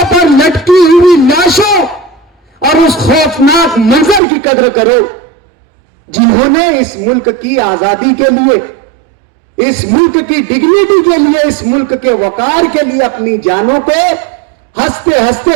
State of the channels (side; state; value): left; drops out; at 4.2 s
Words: पर लटकी हुई लाशों और उस खौफनाक मंजर की कदर करो, जिन्होंने इस मुल्क की आजादी के लिए, इस मुल्क की डिग्निटी के लिए, इस मुल्क के वकार के लिए अपनी जानों को हंसते हंसते